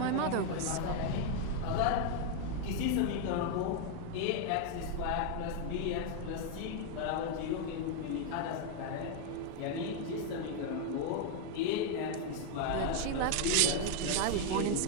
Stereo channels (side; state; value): both; different; correlation 0.01